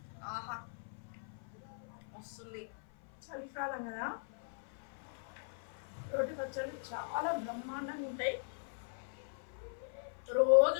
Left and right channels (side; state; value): right; silent; 51 dB below the other